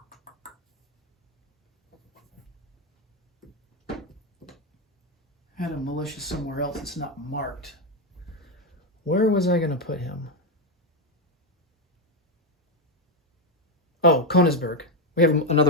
Had a militia somewhere else. It's not marked. Where was I going to put him? Oh, Königsberg. We have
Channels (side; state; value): both; normal; correlation 0.06